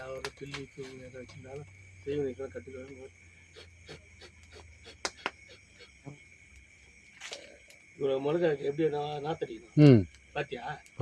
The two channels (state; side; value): identical; both; correlation 1.00